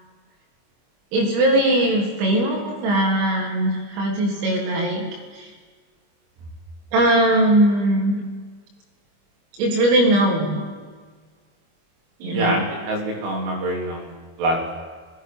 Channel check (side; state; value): left; late; 25 ms